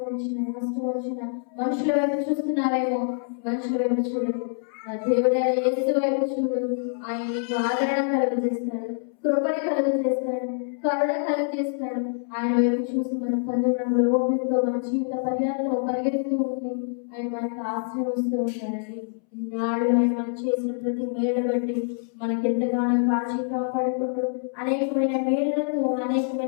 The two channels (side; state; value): right; silent; 61 dB below the other